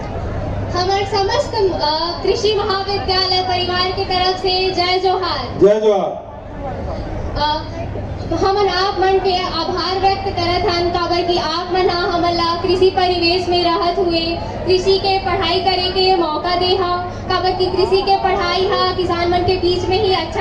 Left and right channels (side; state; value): both; identical; correlation 1.00